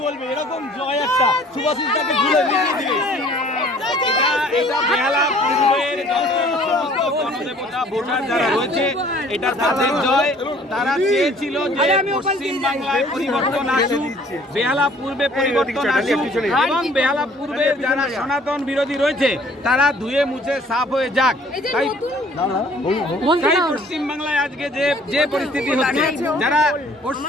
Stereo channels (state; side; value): normal; both; correlation 0.55